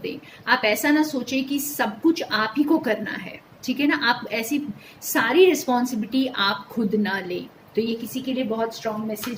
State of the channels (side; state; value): both; identical; correlation 1.00